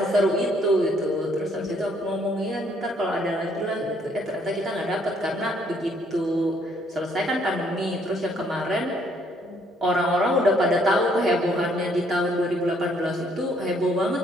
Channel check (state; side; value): normal; both; correlation 0.67